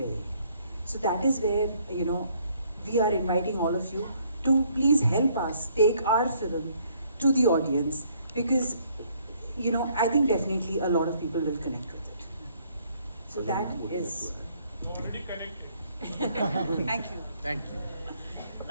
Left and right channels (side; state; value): both; inverted; correlation -0.65